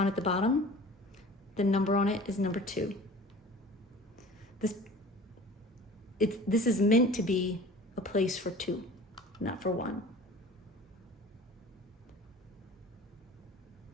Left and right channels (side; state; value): both; normal; correlation 0.42